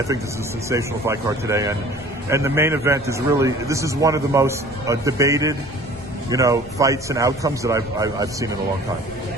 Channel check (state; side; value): noise; left; rumble, 19 dB below the sound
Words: think this is a sensational fight card today, and the main event is really, this is one of the most debated, you know, fights and outcomes that I've seen in a long time.